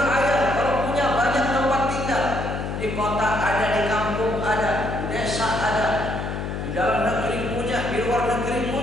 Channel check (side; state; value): left; noise; hum, 5 dB below the sound